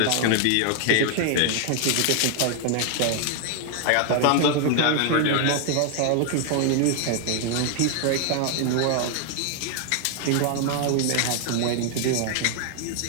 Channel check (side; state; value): both; different; correlation 0.00